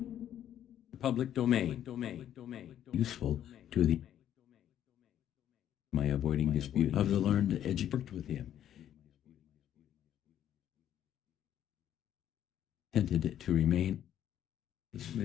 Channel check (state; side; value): quieter; right; 10.8 dB